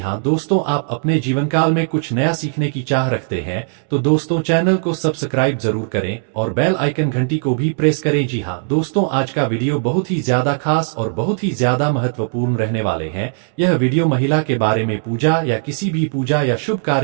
दोस्तों, आप अपने जीवन काल में कुछ नया सीखने की चाह रखते हैं तो दोस्तों चैनल को सब्सक्राइब जरूर करें और बेल आइकन घंटी को भी प्रेस करें। जी हाँ दोस्तों, आज का वीडियो बहुत ही ज्यादा खास और बहुत ही ज्यादा महत्वपूर्ण रहने वाले हैं। यह वीडियो महिला के बारे में पूजा या किसी भी पूजा या शुभ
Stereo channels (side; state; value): left; silent; digital silence